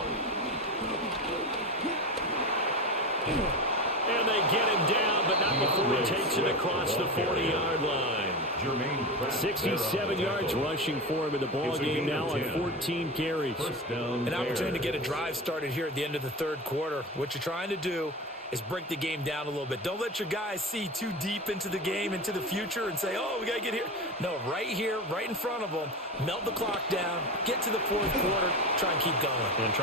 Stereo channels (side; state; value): both; normal; correlation 0.24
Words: And they get him down, but not before he takes it across the 40-yard line. 67 yards rushing for him in the ball game now on 14 carries. An opportunity to get a drive started here at the end of the third quarter. What you're trying to do is break the game down a little bit. Don't let your guys see too deep into the game, into the future, and say, oh, we got to get here. No, right here, right in front of them, melt the clock down, get to the fourth quarter, try and keep going. And